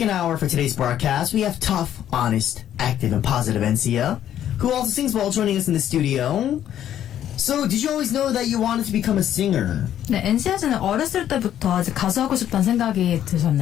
hour for today's broadcast, we have tough, honest, active, and positive NC.A, who also sings well, joining us in the studio. So, did you always know that you wanted to become a singer? 네, NC.A는 어렸을 때부터 이제 가수하고 싶다는 생각이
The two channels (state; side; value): quieter; right; 10.9 dB